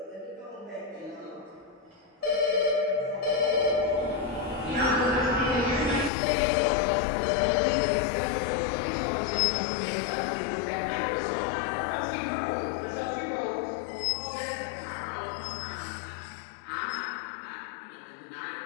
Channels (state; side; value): drops out; right; at 6.1 s